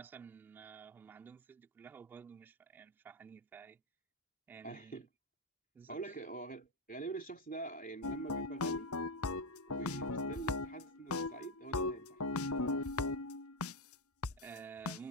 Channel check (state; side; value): normal; both; correlation 0.05